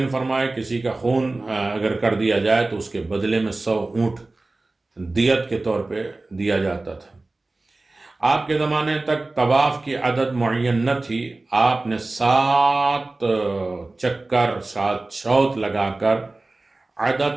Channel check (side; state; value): left; quieter; 3.1 dB